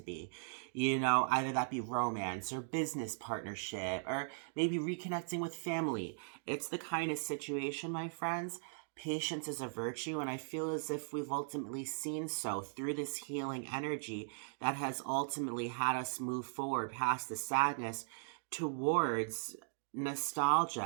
be. Either that be romance or business partnership, or maybe reconnecting with family. It's the kind of situation, my friends. Patience is a virtue, and I feel as if we've ultimately seen so through this healing energy that has ultimately had us move forward past the sadness towards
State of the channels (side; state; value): left; silent; digital silence